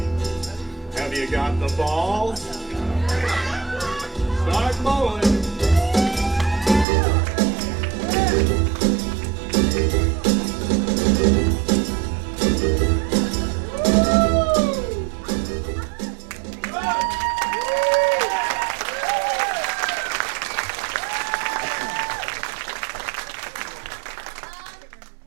Have you got the balls? Start bowling.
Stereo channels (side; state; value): left; drops out; at 6.9 s